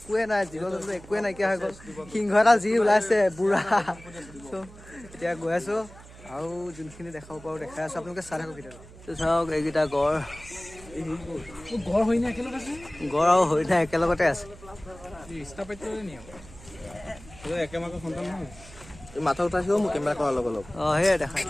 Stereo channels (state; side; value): noise; right; hum, 19 dB below the sound